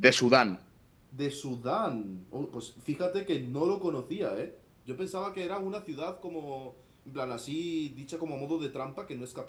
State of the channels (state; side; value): identical; both; correlation 1.00